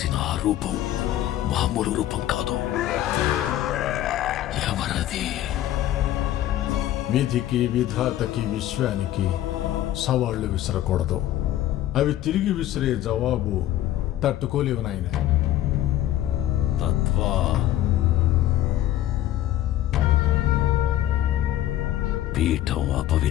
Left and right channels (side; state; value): right; quieter; 13.2 dB